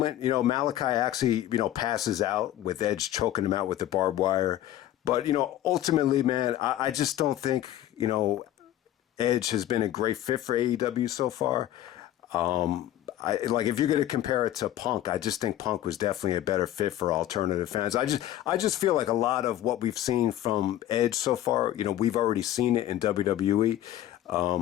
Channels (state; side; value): quieter; right; 13.0 dB